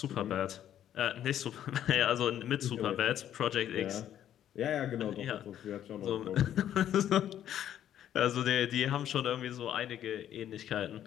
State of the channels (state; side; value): quieter; right; 10.9 dB